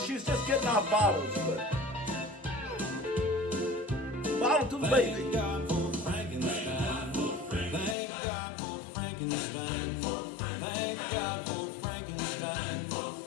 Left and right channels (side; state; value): right; drops out; at 8.0 s